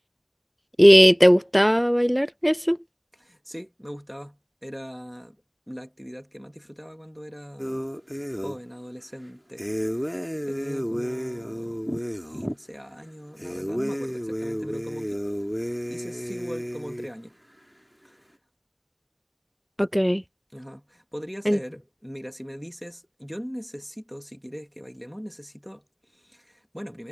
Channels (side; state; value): both; identical; correlation 1.00